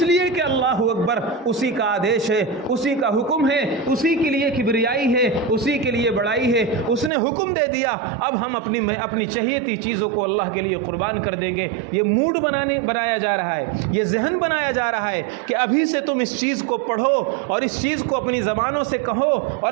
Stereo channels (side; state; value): left; drops out; at 7.1 s